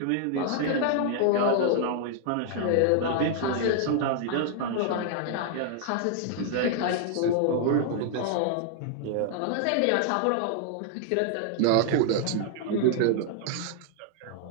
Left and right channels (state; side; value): different; both; correlation 0.00